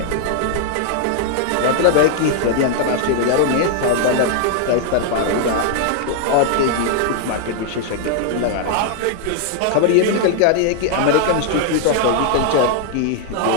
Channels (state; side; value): different; both; correlation 0.00